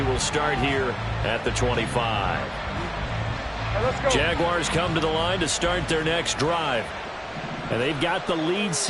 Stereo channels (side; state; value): both; identical; correlation 1.00